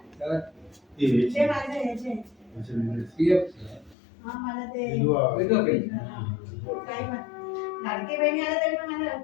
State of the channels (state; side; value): drops out; right; at 4.0 s